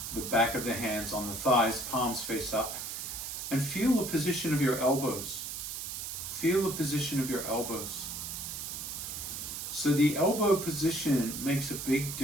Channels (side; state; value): right; noise; hiss, 6 dB below the sound